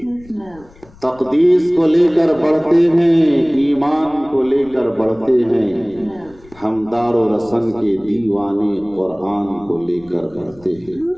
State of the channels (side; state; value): left; noise; rumble, 25 dB below the sound